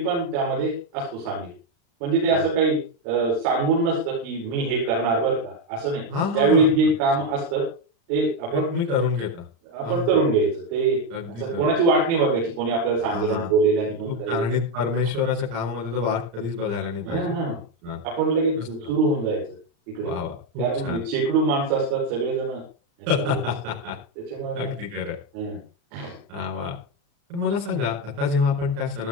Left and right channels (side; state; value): left; late; 35 ms